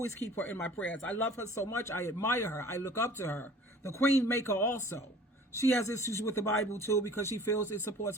keep her in my prayers. I love her so much. I admire her. I look up to her. The Queen Maker also. She has issues with the Bible too because she feels it supports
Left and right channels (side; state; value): both; normal; correlation 0.47